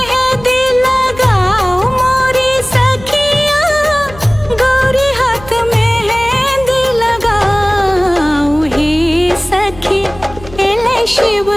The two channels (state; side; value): noise; left; hum, 18 dB below the sound